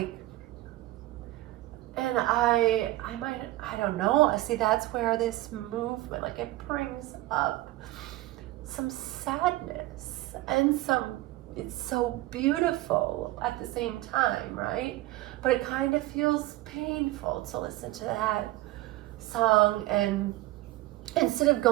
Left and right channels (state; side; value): quieter; left; 17.7 dB